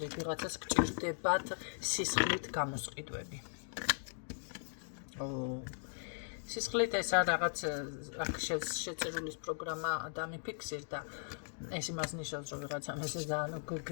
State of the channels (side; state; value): right; silent; digital silence